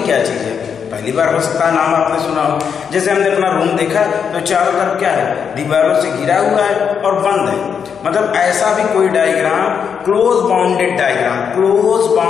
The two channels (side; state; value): right; quieter; 7.0 dB